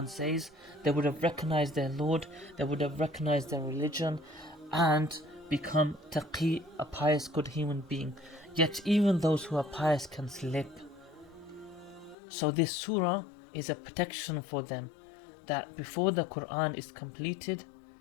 says. They would have recognized their Lord, they would have recognized their religion, and become taqi, a pious, good human being. Yet even those who are pious can slip. So this surah is a protection for them, that before the Quran is completed,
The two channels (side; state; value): right; drops out; at 12.2 s